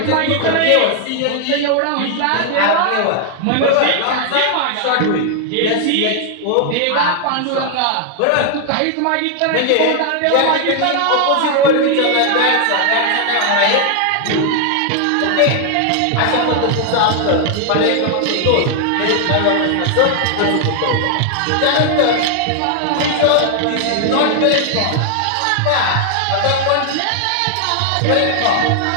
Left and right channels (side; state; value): both; different; correlation 0.00